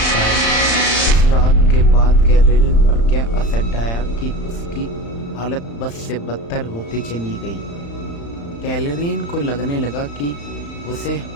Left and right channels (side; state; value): right; late; 35 ms